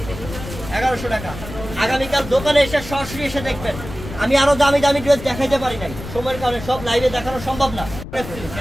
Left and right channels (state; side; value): noise; left; rumble, 11 dB below the sound